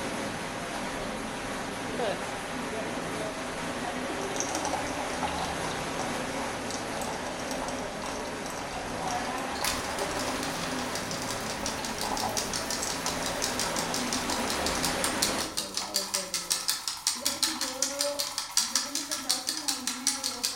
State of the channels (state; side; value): identical; both; correlation 1.00